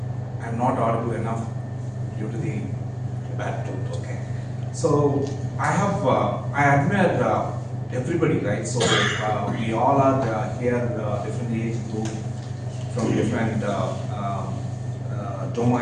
I'm not audible enough due to the bad tooth, okay. So I admire everybody, right? So we all are here, different age group, from different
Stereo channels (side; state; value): both; identical; correlation 1.00